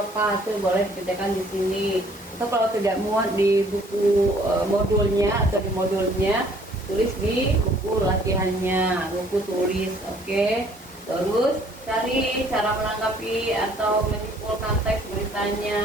Itu boleh dikerjakan di sini. Atau kalau tidak muat di buku modulnya atau di modulnya, tulis di buku latihannya, buku tulis. Oke. Terus cari cara menanggapi atau menyimpulkan teks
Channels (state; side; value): normal; both; correlation 0.59